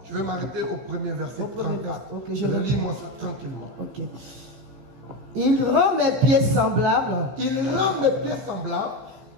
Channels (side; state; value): left; late; 15 ms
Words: Je vais m'arrêter au premier verset Au premier 34. verset. Ok, je lis moi ça tranquillement. Ok. Il rend mes pieds semblables. Il rend mes pieds semblables